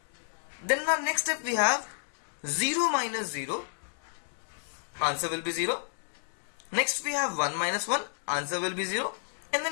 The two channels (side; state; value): right; silent; digital silence